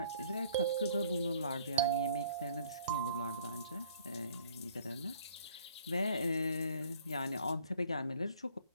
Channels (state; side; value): inverted; both; correlation -0.57